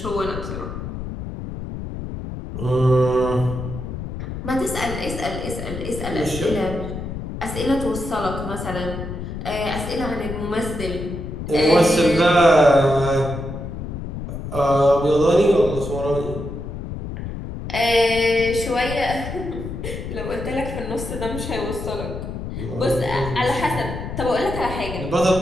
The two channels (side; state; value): left; noise; rumble, 7 dB below the sound